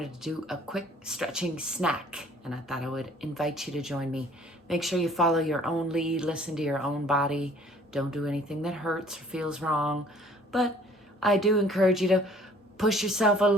to do a quick stretching snack, and I thought I would invite you to join me. Make sure you follow your own lead, listen to your own body. Don't do anything that hurts or feels wrong, but I do encourage you to push yourself a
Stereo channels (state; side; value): normal; both; correlation 0.55